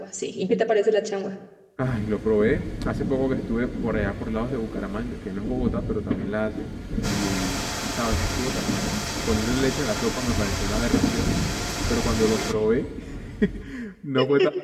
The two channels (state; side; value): identical; both; correlation 1.00